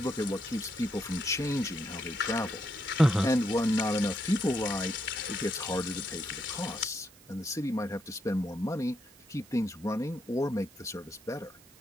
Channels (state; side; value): noise; right; hiss, 25 dB below the sound